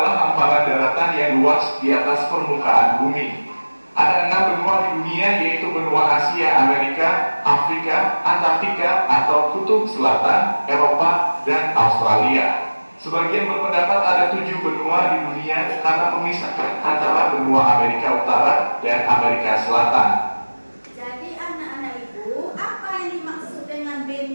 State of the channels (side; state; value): both; inverted; correlation -1.00